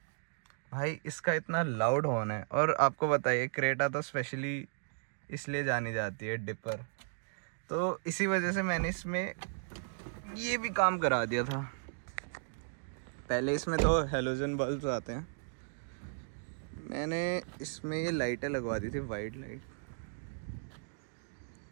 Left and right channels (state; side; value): silent; left; digital silence